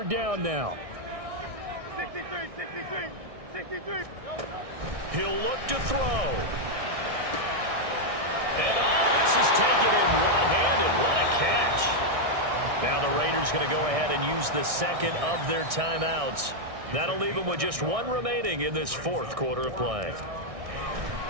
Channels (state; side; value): late; left; 1.6 ms